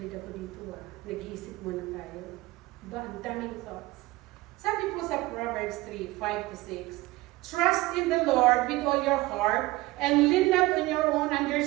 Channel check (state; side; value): quieter; left; 19.6 dB